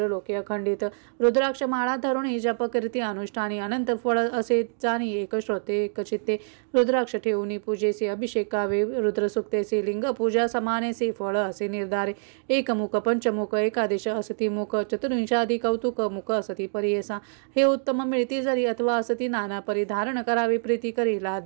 लोके अखंडित रुद्राक्ष माळा धरुणी जप करीती अनुष्ठानी अनंत फळ असे जाणी एक श्रोते एक चित्ते रुद्राक्ष ठेवून पूजेसी अभिषेकावे रुद्रसुक्तेसी लिंग पूजा समानेसी फळ असे निर्धारे एक मुख पंचमुख एकादश असती मुख चतुर्विंशादी कौतुक मुख असती परियेसा हे उत्तम मिळती जरी अथवा असती नाना परिधान धारण करावी प्रीती करी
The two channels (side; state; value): left; silent; digital silence